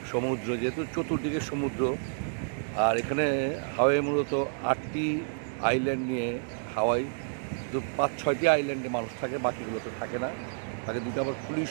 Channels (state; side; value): silent; left; digital silence